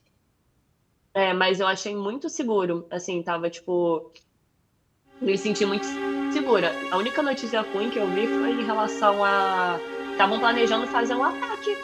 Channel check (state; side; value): identical; both; correlation 1.00